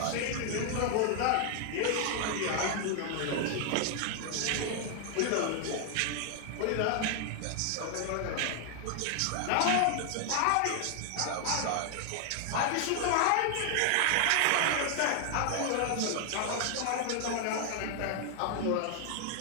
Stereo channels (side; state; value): both; different; correlation 0.00